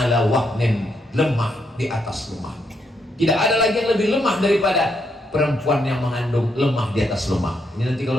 wahnin, lemah di atas lemah. Tidak ada lagi yang lebih lemah daripada perempuan yang mengandung, lemah di atas lemah. Ini nanti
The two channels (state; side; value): normal; both; correlation 0.78